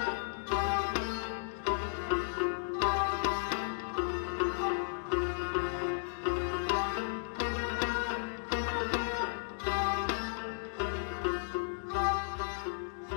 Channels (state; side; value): silent; right; digital silence